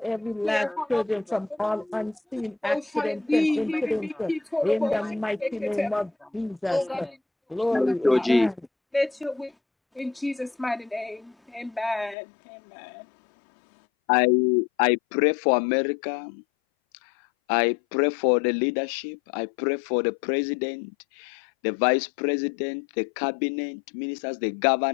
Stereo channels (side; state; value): right; drops out; at 12.2 s